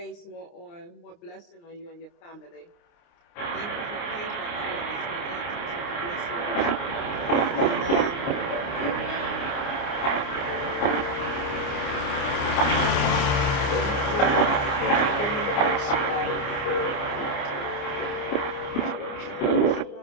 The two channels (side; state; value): right; late; 29 ms